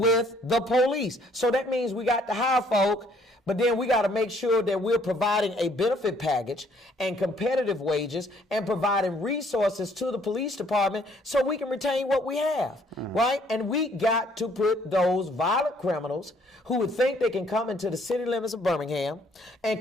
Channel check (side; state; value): both; normal; correlation 0.63